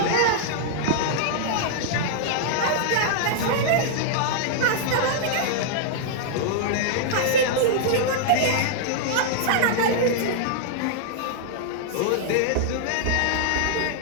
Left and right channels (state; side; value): different; both; correlation -0.01